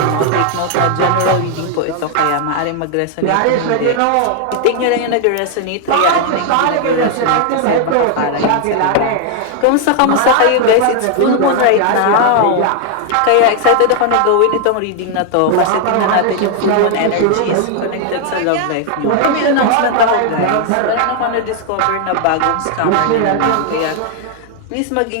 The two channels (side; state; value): both; different; correlation 0.00